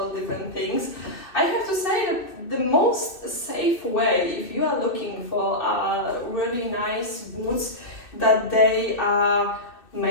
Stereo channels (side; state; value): right; late; 2.6 ms